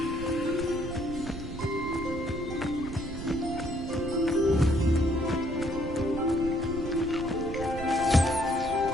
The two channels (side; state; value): right; noise; rumble, 9 dB below the sound